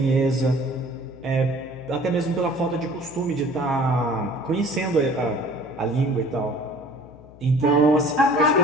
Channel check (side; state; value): left; noise; hum, 21 dB below the sound